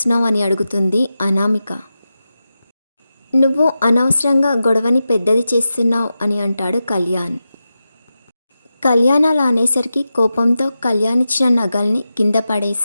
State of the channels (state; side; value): inverted; both; correlation -0.91